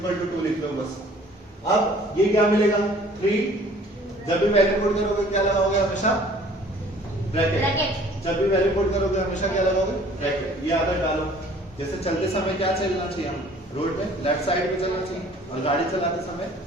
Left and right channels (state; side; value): normal; both; correlation 0.53